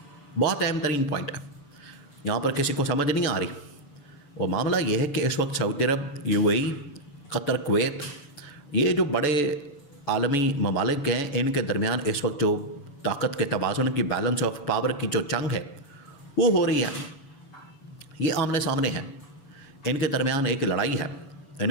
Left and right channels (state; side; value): late; right; 6.9 ms